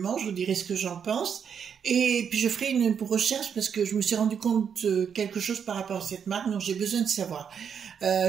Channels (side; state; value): left; quieter; 7.4 dB